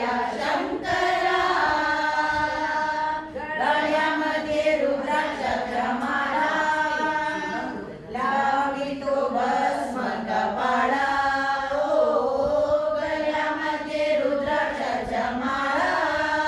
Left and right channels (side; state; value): both; identical; correlation 1.00